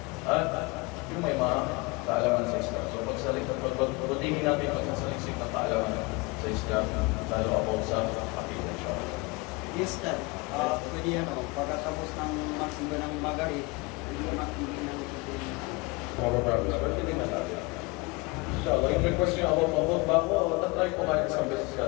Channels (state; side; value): quieter; right; 26.0 dB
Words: At yung may mga kaalaman sa Islam. So pagbutingin natin magsasaliksik ng kaalaman sa Islam, lalo ako sa akida, inshallah. Yes, Dad. Pwede pagkatapos ng magsimba ng Magari, hindi makikita ng tutuloy. Mababagas, pero hindi na tayo. Inshallah, yung request nyo ako, bago, tatry ko kahit isang beses